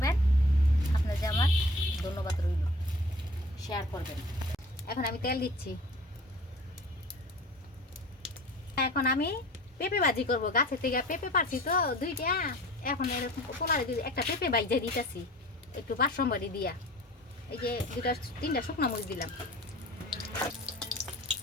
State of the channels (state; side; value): normal; both; correlation 0.45